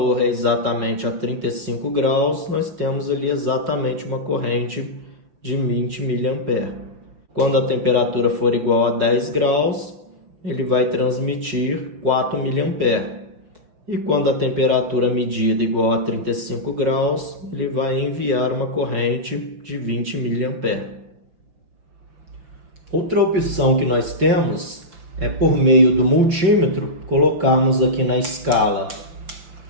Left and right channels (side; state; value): left; late; 5.8 ms